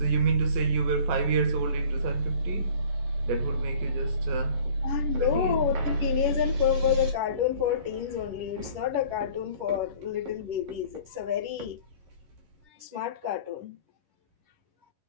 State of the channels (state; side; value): late; left; 10 ms